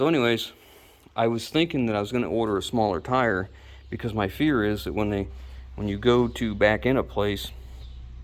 anyways, I was thinking that I was going to order a smaller tire, because my fear is that when you go to back in a place,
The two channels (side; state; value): both; identical; correlation 1.00